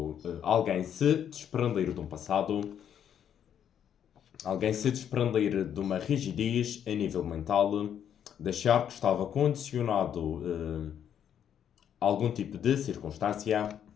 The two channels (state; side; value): quieter; right; 9.1 dB